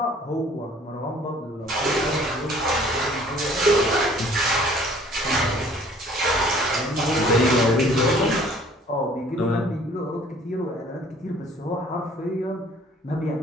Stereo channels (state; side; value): normal; both; correlation 0.55